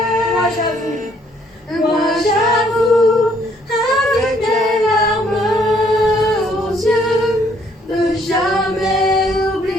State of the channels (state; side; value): normal; both; correlation 0.66